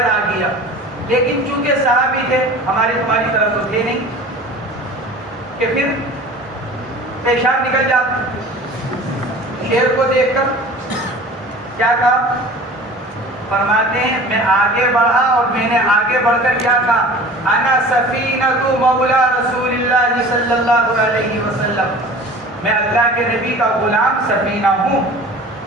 آ گیا, لیکن چونکہ صحابی تھے ہماری تمہاری طرف تو تھے نہیں کہ پھر پیشاب نکل جاتا. شیر کو دیکھ کر کیا کہا؟ فرماتے ہیں میں آگے بڑھا اور میں نے آگے بڑھ کر کیا کہا؟ انا سفینہ مولا رسول اللہ صلی اللہ علیہ وسلم, میں اللہ کے نبی کا غلام سفینہ ہوں.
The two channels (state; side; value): normal; both; correlation 0.41